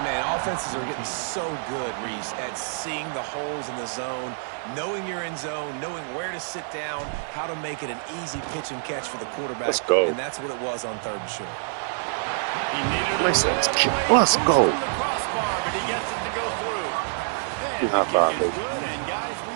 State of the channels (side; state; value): left; silent; 57 dB below the other